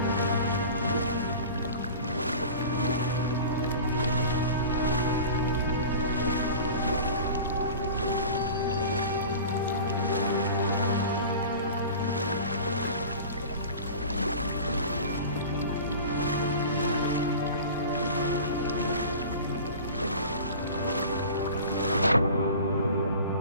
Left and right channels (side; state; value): both; inverted; correlation -0.38